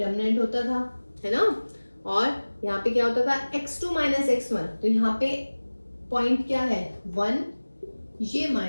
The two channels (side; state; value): both; inverted; correlation -1.00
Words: होता था, है ना, और यहाँ पे क्या होता था, x2 - x1। तो यहाँ पे पॉइंट क्या है 1, ये